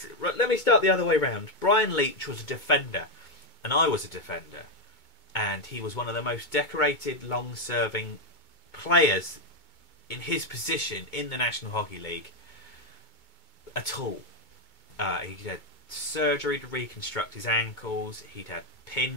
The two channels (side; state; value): right; late; 2.2 ms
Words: let me start the other way round. Brian Leetch was a defender and I was a defender, and he was one of the most decorated long-serving players in his position in the National Hockey League at all. He had surgery to reconstruct his ankles, he'd had